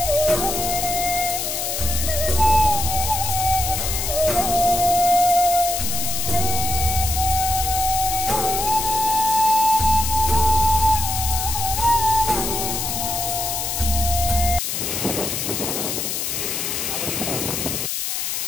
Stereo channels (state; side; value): noise; left; hiss, 2 dB below the sound